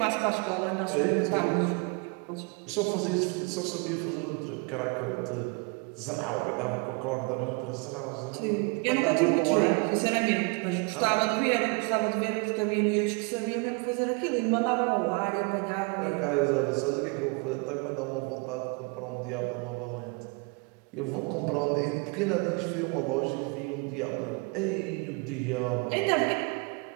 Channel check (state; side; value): quieter; left; 32.1 dB